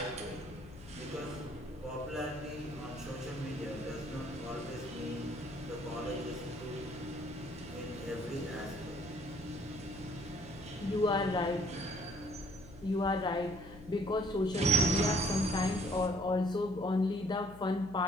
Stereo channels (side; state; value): left; noise; hum, 17 dB below the sound